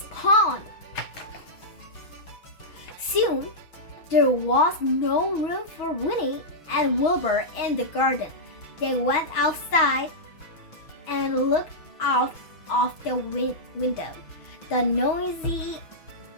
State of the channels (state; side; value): late; right; 6.2 ms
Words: pond. Soon, there was no room for Winnie and Wilbur in the garden. They went outside and looked out of the window. The noise